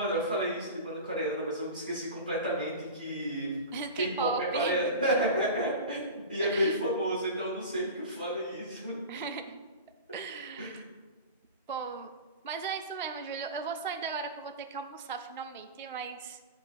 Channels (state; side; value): inverted; both; correlation -0.31